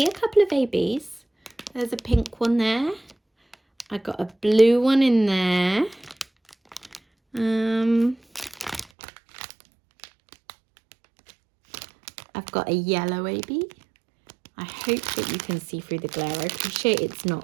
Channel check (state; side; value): drops out; left; at 8.8 s